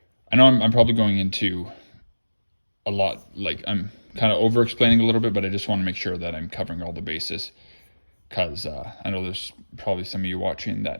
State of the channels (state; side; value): inverted; both; correlation -1.00